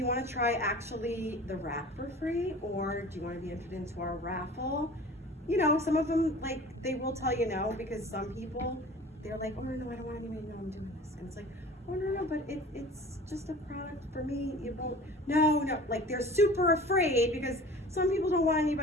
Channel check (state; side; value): normal; both; correlation 0.42